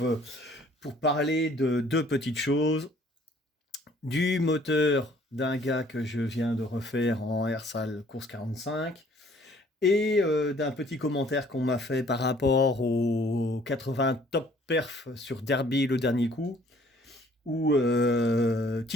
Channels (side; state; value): both; normal; correlation 0.58